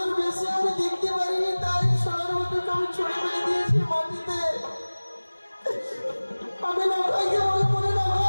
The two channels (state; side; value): inverted; both; correlation -1.00